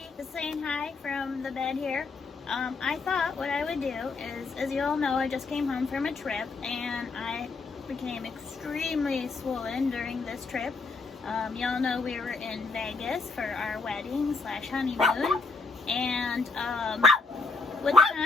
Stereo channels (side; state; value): right; quieter; 4.1 dB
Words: just saying hi from the bed here. I thought what I would do is, as you all know, I just came home from a trip and I became extremely swollen during this trip. Y'all know we were in Vegas for our wedding / honeymoon, and with the